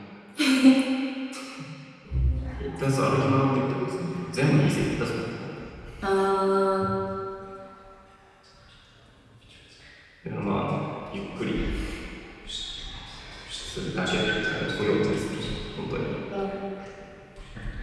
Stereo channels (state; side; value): identical; both; correlation 1.00